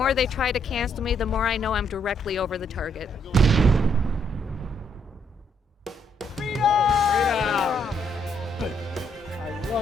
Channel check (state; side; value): normal; both; correlation 0.72